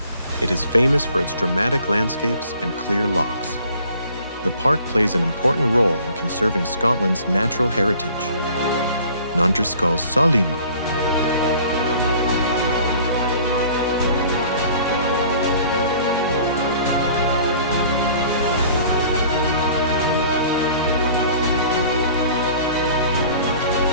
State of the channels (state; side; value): inverted; both; correlation -0.50